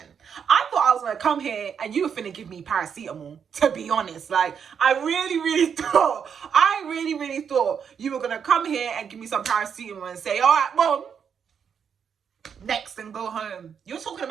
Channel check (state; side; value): quieter; left; 7.2 dB